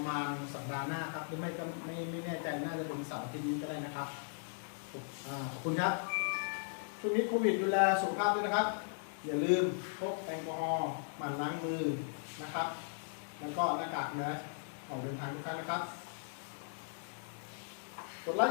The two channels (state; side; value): silent; right; digital silence